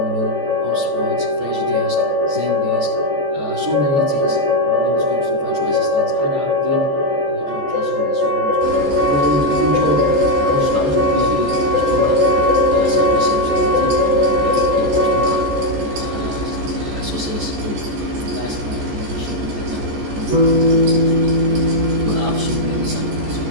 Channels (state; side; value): late; left; 14 ms